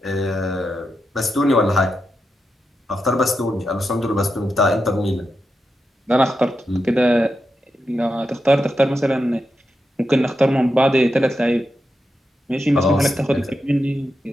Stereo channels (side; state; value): both; normal; correlation 0.87